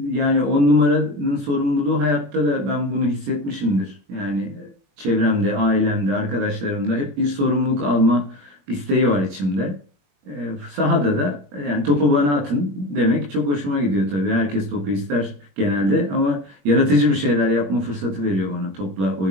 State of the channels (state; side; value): late; left; 21 ms